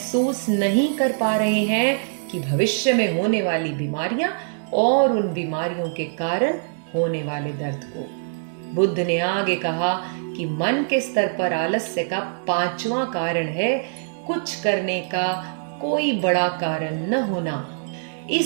नहीं कर पा रहे हैं कि भविष्य में होने वाली बीमारियां और उन बीमारियों के कारण होने वाले दर्द को। बुद्ध ने आगे कहा कि मन के स्तर पर आलस्य का पांचवा कारण है कुछ करने का कोई बड़ा कारण न होना।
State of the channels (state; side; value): silent; left; digital silence